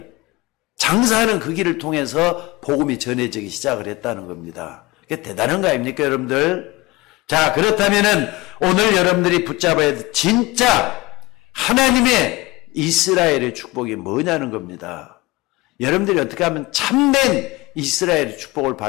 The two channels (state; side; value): quieter; right; 21.1 dB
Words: 장사하는 그 길을 통해서 복음이 전해지기 시작을 했다는 겁니다. 그게 대단한 거 아닙니까 여러분들? 자, 그렇다면은 오늘 여러분들이 붙잡아야 될 진짜 하나님의 이스라엘의 축복이 뭐냐는 겁니다. 여러분들이 어떻게 하면 참된 이스라엘의 축복을